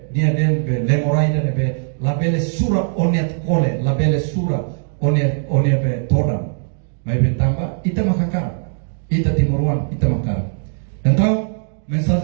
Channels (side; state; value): left; silent; 62 dB below the other